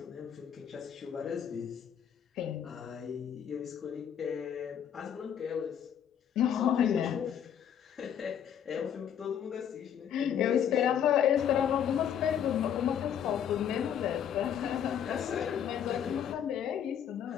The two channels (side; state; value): right; quieter; 9.0 dB